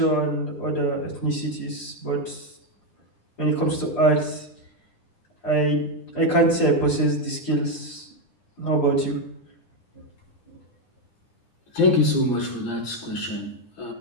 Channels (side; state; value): right; late; 9.8 ms